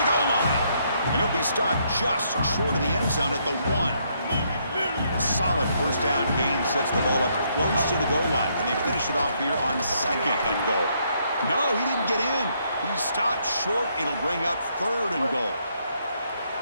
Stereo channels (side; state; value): both; inverted; correlation -0.73